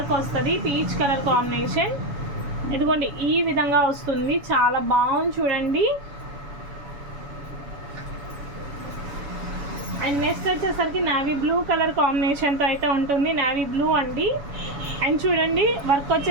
వస్తుంది, పీచ్ కలర్ కాంబినేషన్. ఇదిగోండి ఈ విధంగా వస్తుంది. చాలా బాగుంది చూడండి. అండ్ నెక్స్ట్ వచ్చేసరికి నావీ బ్లూ కలర్ కాంబినేషన్తో అయితే ఉంటుంది. నావీ బ్లూ అండి. అండ్ చూడండి వర్క్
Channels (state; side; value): late; left; 7.1 ms